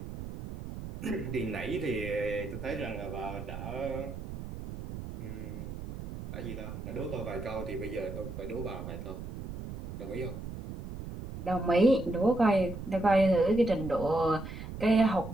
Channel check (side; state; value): right; noise; rumble, 9 dB below the sound